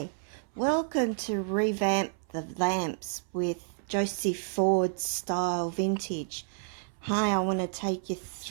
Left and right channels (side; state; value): left; silent; 58 dB below the other